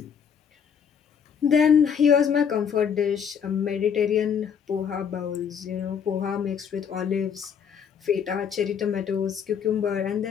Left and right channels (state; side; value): quieter; right; 7.4 dB